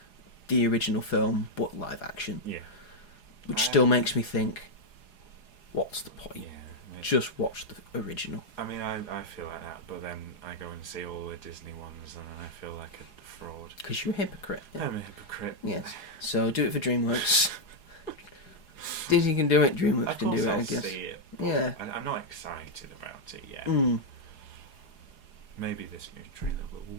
the original film, but live action. Yeah. Which still makes me think, what's the point? Yeah. Just watch the original. I mean, I feel like that, but then I go and see all the Disney ones, and I feel like a fraud. Because you're a hypocrite. Yeah. I'm a hypocrite. Yes. So do it for DreamWorks. Disney can do it, DreamWorks can do it, I guess. See it, Yeah. I'm not excited about it yet. Maybe this new trailer will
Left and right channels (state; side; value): late; right; 4.8 ms